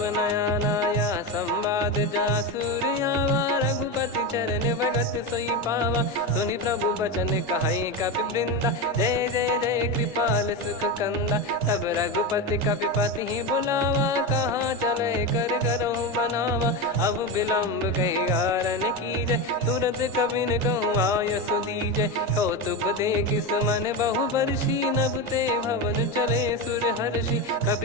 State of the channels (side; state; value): both; normal; correlation 0.17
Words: नयाना। या संवाद जासुर आवा रघुपति चरण भगत सोई पावा। सुनि प्रभु बचन कहे कपि वृंदा जय जय जय कृपाल सुख कंदा। तब रघुपति कपि पति ही बुलावा कहाँ चले कर करहु बनावा। अब विलम्ब कही कारण कीजय तुरंत कबिन कहूँ आयस दीजय। कौतुक देख सुमन बहु बरसी नभ ते भवन चले सुर हर्षि।